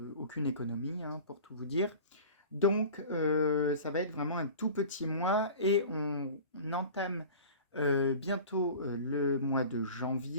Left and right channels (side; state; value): both; inverted; correlation -0.39